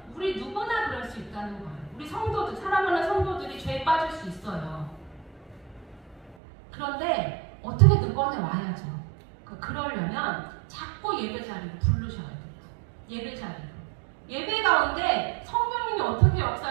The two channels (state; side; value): drops out; left; at 6.4 s